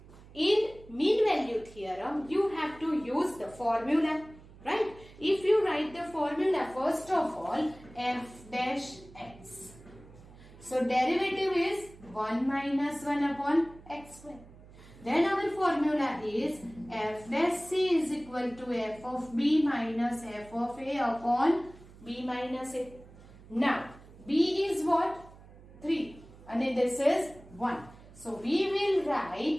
in mean value theorem you have to use the formula, right? If you write the formula first of all f dash x. So derivative is 1 minus 1 upon x square. Then our formula is f dash c is equal to f of b minus f of a upon b minus a. Now b is what? 3 and this is 1. So we will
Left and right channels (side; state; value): right; noise; hum, 21 dB below the sound